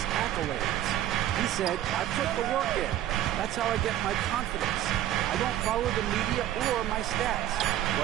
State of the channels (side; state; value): left; quieter; 12.6 dB